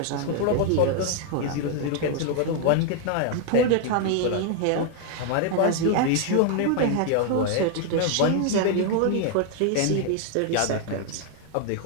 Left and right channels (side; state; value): both; different; correlation 0.00